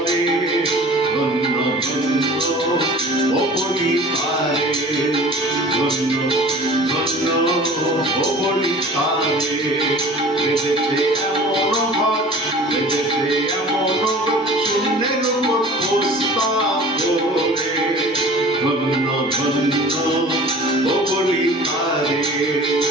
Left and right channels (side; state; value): both; normal; correlation 0.43